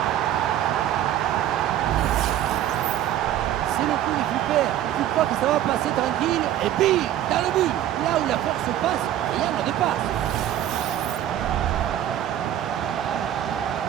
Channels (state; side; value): quieter; left; 11.8 dB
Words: C'est le coup du super. Tu crois que ça va passer tranquille et puis dans le but, là où la force passe, rien ne dépasse.